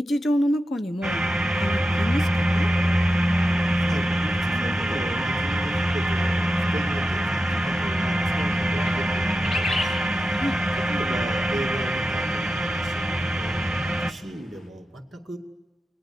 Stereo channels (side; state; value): both; normal; correlation 0.91